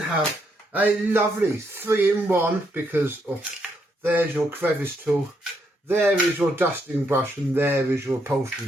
a lovely 3-in-1 because there's your crevice tool, there is your dusting brush, and there is your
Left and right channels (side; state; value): both; normal; correlation 0.76